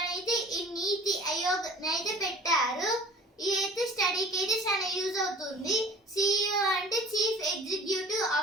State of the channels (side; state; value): both; normal; correlation 0.46